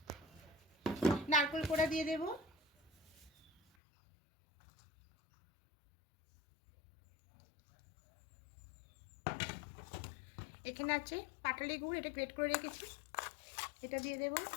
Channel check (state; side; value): drops out; right; at 3.6 s